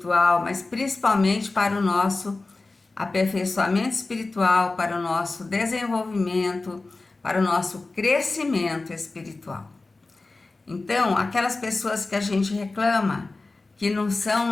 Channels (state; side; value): quieter; right; 3.4 dB